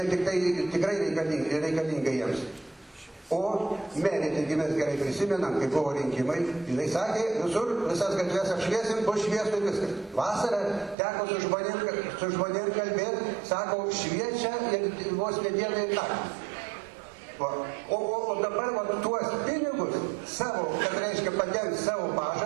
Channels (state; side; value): drops out; left; at 11.0 s